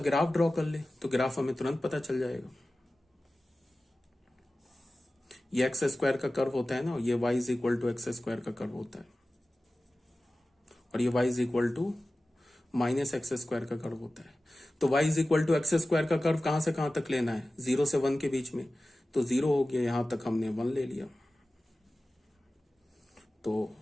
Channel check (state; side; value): normal; both; correlation 0.96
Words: ड्रॉ कर ले तो ग्राफ हमें तुरंत पता चल जाएगा। ये एक्स स्क्वायर का कर्व होता है ना, ये y is equal to x square का कर्व होता है, और ये y is equal to minus x square का कर्व होता है। तो y is equal to x square का कर्व कहां से कहां तक लेना है, 0 से 1 के बीच में, तो 0 हो गया, यहां तक हमने 1 ले लिया। तो